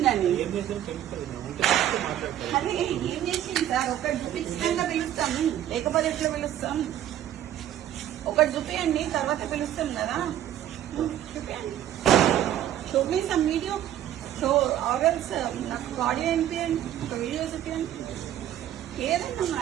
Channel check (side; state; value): left; quieter; 11.7 dB